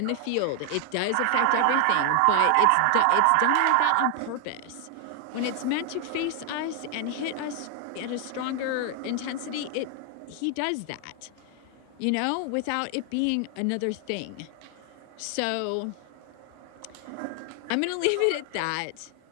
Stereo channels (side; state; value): both; different; correlation 0.00